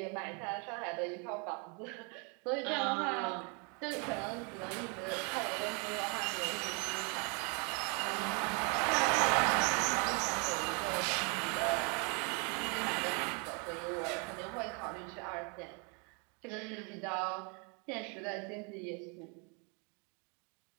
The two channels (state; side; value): quieter; left; 34.8 dB